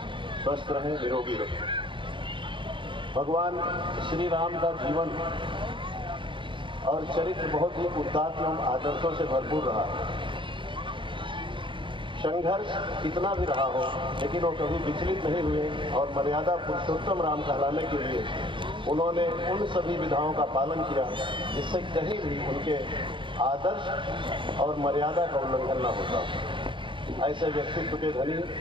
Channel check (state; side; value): late; left; 0.24 ms